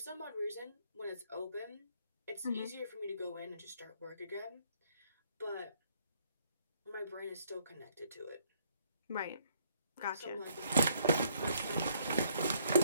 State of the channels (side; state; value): both; inverted; correlation -0.66